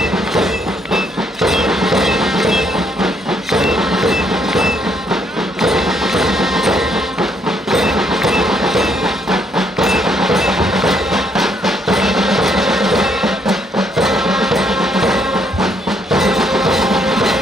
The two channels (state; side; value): normal; both; correlation 0.71